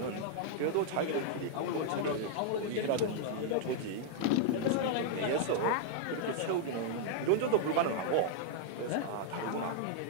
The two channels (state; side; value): different; both; correlation -0.01